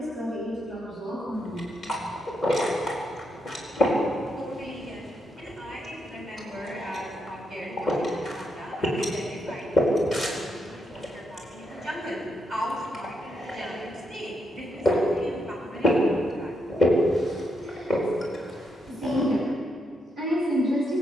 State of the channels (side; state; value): both; normal; correlation 0.80